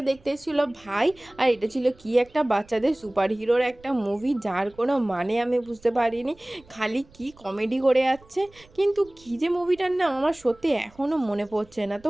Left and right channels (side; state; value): right; noise; rumble, 27 dB below the sound